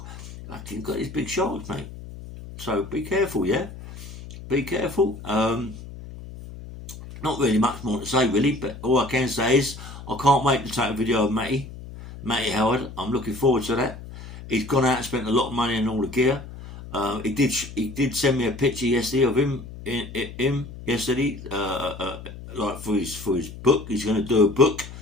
Fucking got these big sharks, mate. So be careful, yeah. Be careful. Not really much more to say, really, but all I can say is I can't wait to take a video of Matty Howard. I'm looking forward to that. He's gone out and spent a lot of money on all the gear. He did send me a picture yesterday of him yesterday, like for his book. He's going to do a book,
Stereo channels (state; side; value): noise; left; hum, 13 dB below the sound